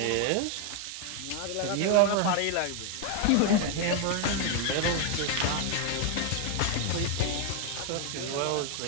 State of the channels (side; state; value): both; different; correlation 0.00